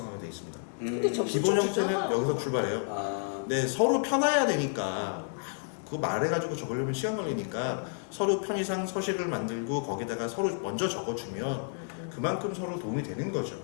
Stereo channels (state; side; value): silent; right; 57 dB below the other